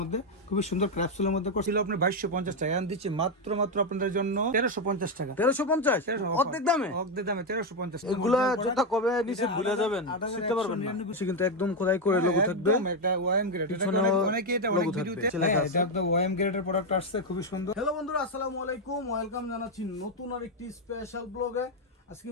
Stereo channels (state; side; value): normal; both; correlation 0.05